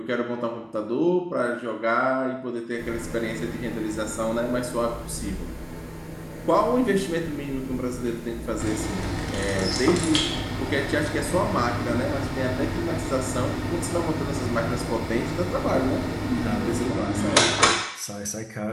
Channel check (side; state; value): both; identical; correlation 1.00